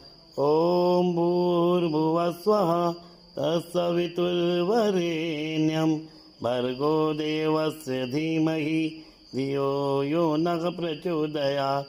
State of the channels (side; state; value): both; identical; correlation 1.00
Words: ओम भूर्भुवस्वः तत्सवितुर्वरेण्यं भर्गो देवस्य धीमहि धियो यो नः प्रचोदयात्।